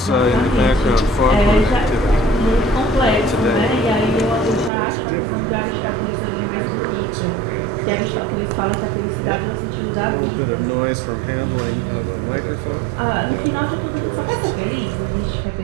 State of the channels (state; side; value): drops out; left; at 4.7 s